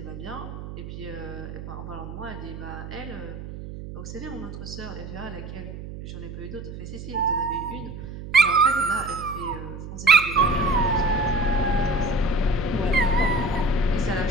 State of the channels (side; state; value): right; noise; hum, 10 dB below the sound